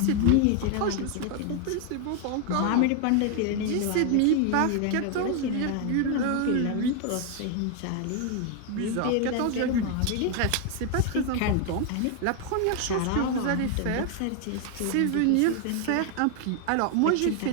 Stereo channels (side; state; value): both; different; correlation 0.01